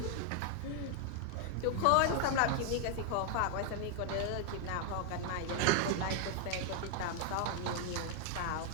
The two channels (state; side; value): different; both; correlation 0.00